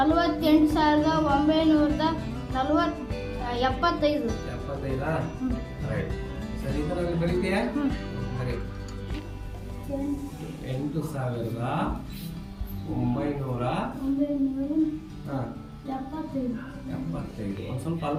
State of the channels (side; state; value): both; identical; correlation 1.00